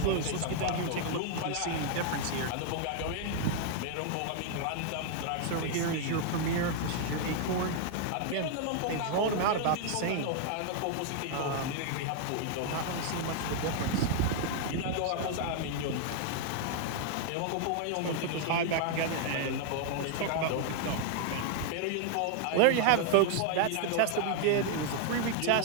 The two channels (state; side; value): different; both; correlation 0.00